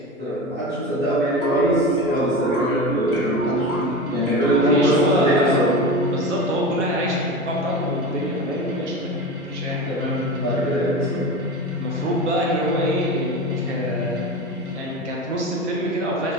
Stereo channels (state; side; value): normal; both; correlation 0.28